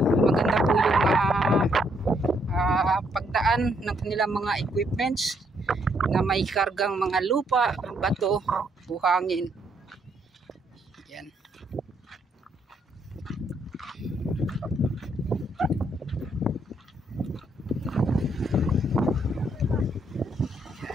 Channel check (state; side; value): normal; both; correlation 0.72